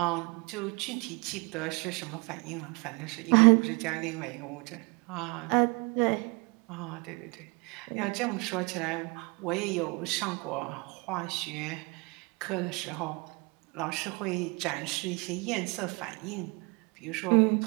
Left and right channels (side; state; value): left; quieter; 29.6 dB